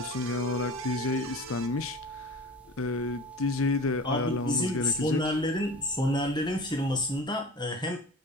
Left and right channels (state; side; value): normal; both; correlation 0.37